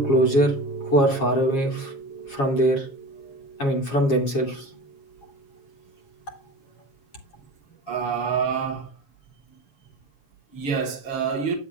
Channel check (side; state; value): right; late; 7.3 ms